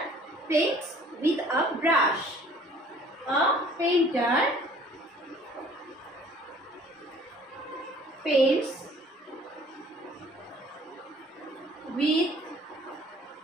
paints with a brush, a painter paints with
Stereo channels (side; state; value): both; normal; correlation 0.53